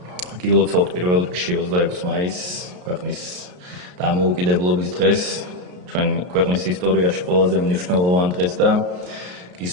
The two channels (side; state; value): left; late; 33 ms